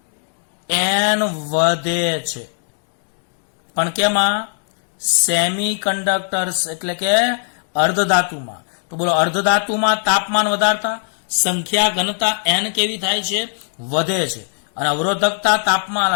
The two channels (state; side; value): silent; right; digital silence